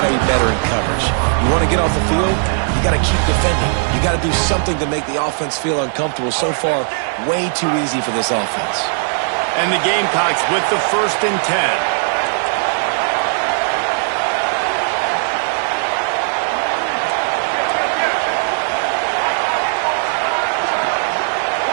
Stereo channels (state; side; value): silent; left; 67 dB below the other